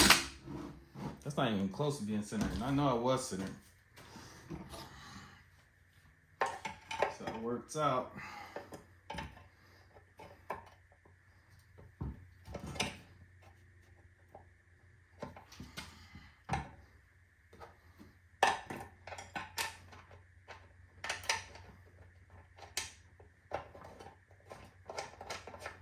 That's not even close to being centered. And I know it was centered. So it works out.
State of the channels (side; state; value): both; identical; correlation 1.00